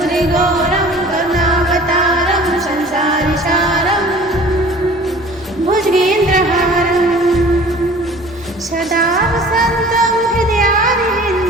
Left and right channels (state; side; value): normal; both; correlation 0.46